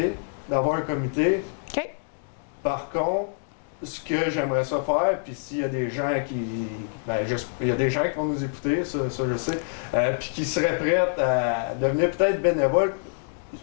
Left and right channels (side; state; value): right; silent; digital silence